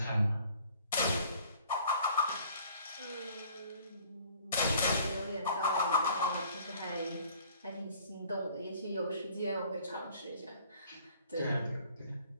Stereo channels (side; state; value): both; inverted; correlation -0.55